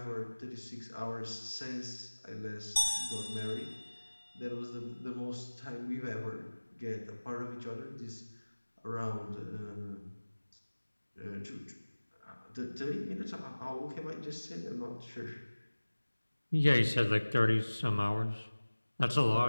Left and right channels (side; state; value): both; inverted; correlation -1.00